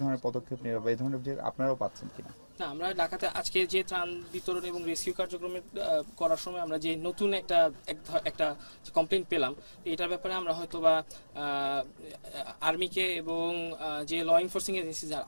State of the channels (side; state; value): both; inverted; correlation -1.00